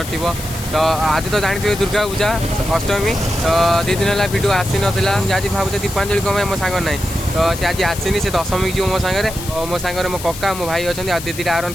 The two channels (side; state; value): left; noise; hiss, 11 dB below the sound